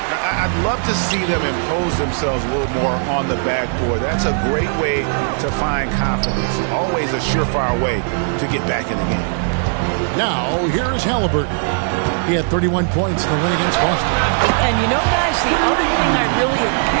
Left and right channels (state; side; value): silent; left; 60 dB below the other